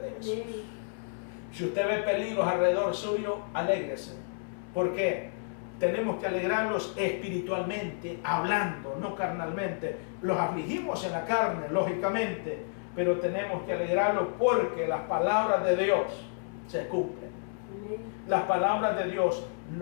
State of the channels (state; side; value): silent; right; 57 dB below the other